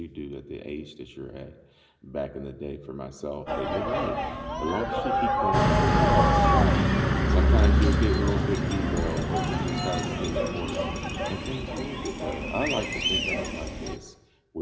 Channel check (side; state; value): both; identical; correlation 1.00